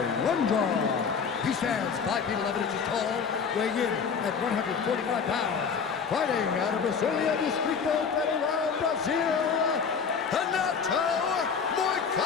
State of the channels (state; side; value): quieter; right; 6.1 dB